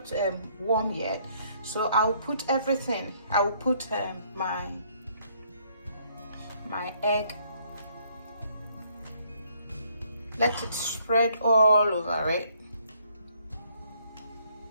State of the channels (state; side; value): inverted; both; correlation -0.67